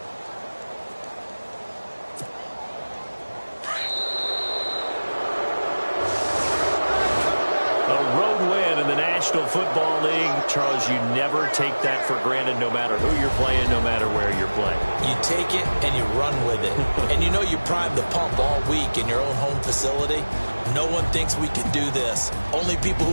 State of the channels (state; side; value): inverted; both; correlation -1.00